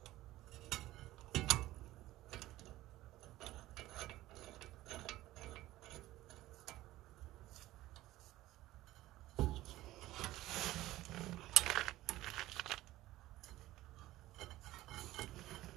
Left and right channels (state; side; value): quieter; left; 16.3 dB